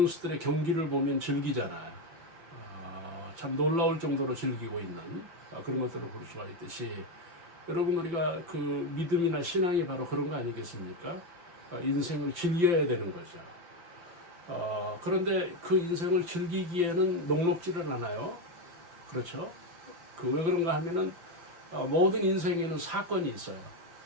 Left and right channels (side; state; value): left; late; 5.9 ms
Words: 경기를 보면 즐기잖아요. 참 놀라울 정도로 즐기고 있는 그런 것들을 볼 수가 있듯이, 여러분 우리가 그 믿음이나 신앙이 바로 그런 거 아니겠습니까? 인생을 즐겨야 되는 거죠. 그런데 그 인생을 즐기기에는 녹록지를 않아요. 그렇죠? 왜 그런가 하면은 모든 인생에는 사건이 있어요.